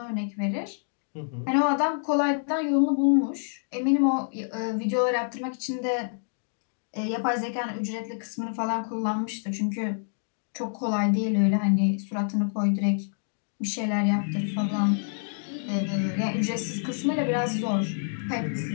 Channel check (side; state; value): right; silent; digital silence